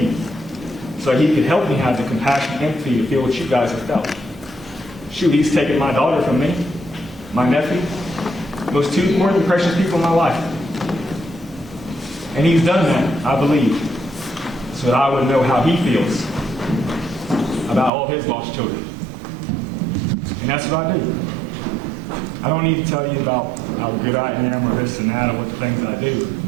so he could help me have the compassion and empathy to feel what you guys have felt. Shoot, he's taken my daughter from me, my nephew, those 2 more than precious people in my life. And he's done that, I believe, so that I would know how he feels about all his lost children. And that's what I do. I don't need to tell you about how good I am or this and that or what the things that I do,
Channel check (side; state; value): left; drops out; at 17.9 s